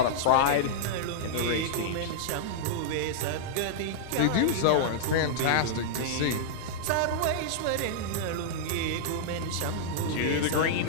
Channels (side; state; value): both; different; correlation -0.02